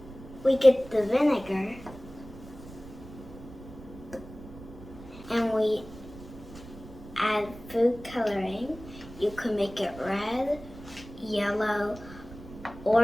We get the vinegar and we add food coloring. You can make it red, yellow,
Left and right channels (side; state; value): right; noise; rumble, 16 dB below the sound